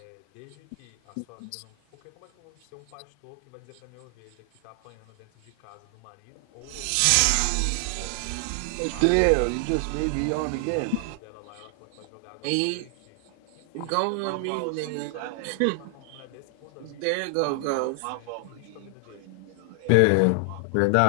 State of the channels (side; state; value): both; different; correlation 0.00